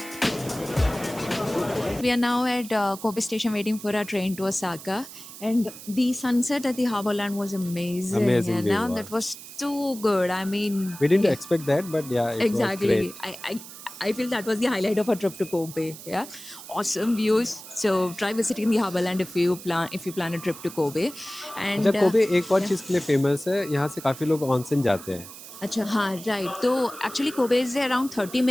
We are now at Kobe Station waiting for our train to Osaka, and the sunset at the Harborland was amazing. Amazing and view, now wow. that was too good. I mean, We didn't expect that, but yeah, it exactly. was great. I feel that was the highlight of our trip to Kobe. Yeah, awesome views. So try visiting the Harborland if you plan a trip to Kobe. And अच्छा Kobe एक और चीज़ के लिए famous है. यहाँ से काफ़ी लोग ऑनसेन जाते हैं. Acha, हाँ, right. So actually Kobe is around 30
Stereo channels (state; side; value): noise; right; hiss, 15 dB below the sound